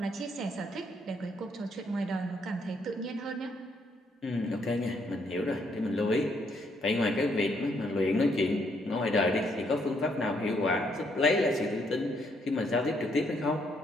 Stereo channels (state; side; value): normal; both; correlation 0.72